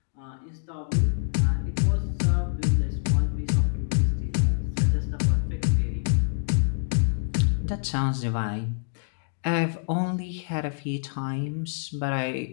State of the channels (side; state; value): right; silent; digital silence